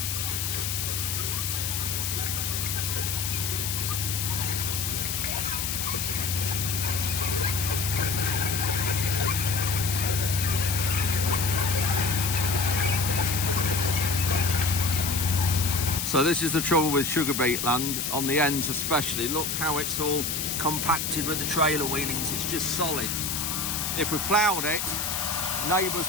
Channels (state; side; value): noise; left; hiss, 1 dB below the sound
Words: So this is the trouble with sugar beet land, on the ends especially. Look how it's all compacted with the trailer wheelings, it's just solid. If we ploughed it, neighbours